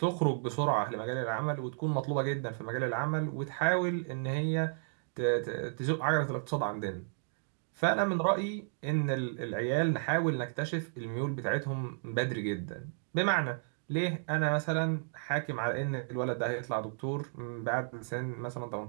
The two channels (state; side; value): silent; left; digital silence